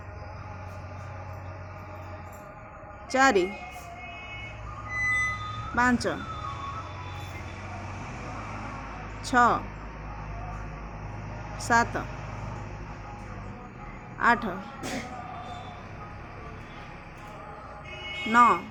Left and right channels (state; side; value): identical; both; correlation 1.00